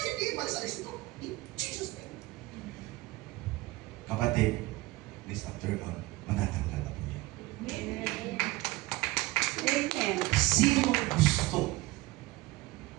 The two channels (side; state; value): left; quieter; 20.3 dB